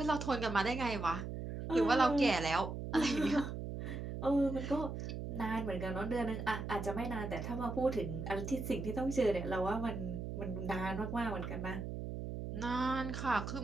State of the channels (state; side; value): noise; right; hum, 6 dB below the sound